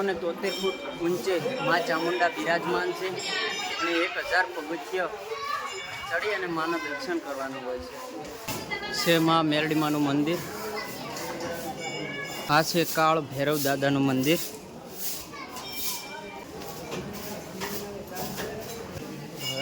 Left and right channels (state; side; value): identical; both; correlation 1.00